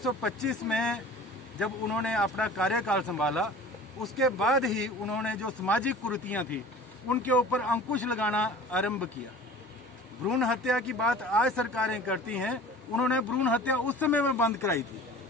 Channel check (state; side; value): normal; both; correlation 0.42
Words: में जब उन्होंने अपना कार्यकाल संभाला, उसके बाद ही उन्होंने जो सामाजिक कुरीतियां थी उनके ऊपर अंकुश लगाना आरंभ किया। भ्रूण हत्या की बात आज सरकारें करती हैं, उन्होंने भ्रूण हत्या उस समय में बंद कराई थी,